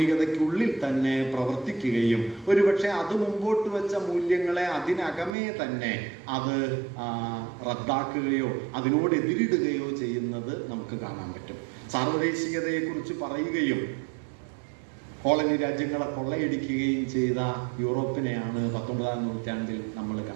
തന്നെ പ്രവർത്തിക്കുകയും ഒരുപക്ഷെ അത് മുമ്പോട്ട് വെച്ച മൂല്യങ്ങളെ അതിനകമേ തന്നെ അത് റദ്ദാക്കുകയോ അതിനോട് എതിരിടുകയോ ചെയ്യുന്നത് നമുക്ക് കാണാൻ പറ്റും. സാർവദേശികതയെക്കുറിച്ച് പറയുകയും കോളനി രാജ്യങ്ങളെ കൊള്ളയടിക്കുകയും ചെയ്ത യൂറോപ്പിനെയാണ് 19ാം നൂറ്റാണ്ടിൽ നമ്മൾ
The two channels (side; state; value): left; drops out; at 5.3 s